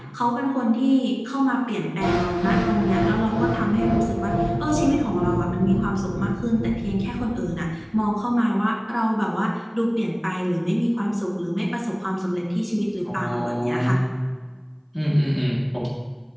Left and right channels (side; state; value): both; identical; correlation 1.00